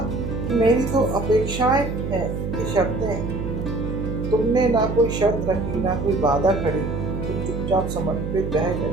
कि मेरी तो अपेक्षाएं हैं, ये शर्तें हैं। तुमने ना कोई शर्त रखी, ना कोई बाधा खड़ी। तुम चुपचाप समर्पित रह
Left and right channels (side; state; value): right; noise; hum, 4 dB below the sound